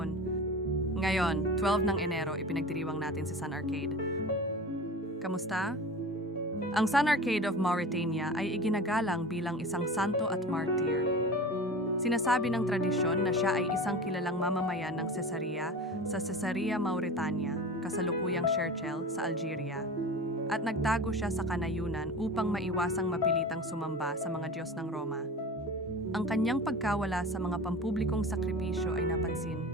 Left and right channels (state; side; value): normal; both; correlation 0.34